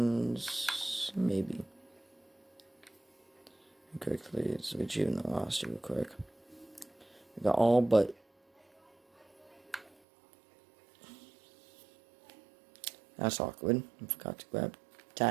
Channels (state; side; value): drops out; left; at 9.9 s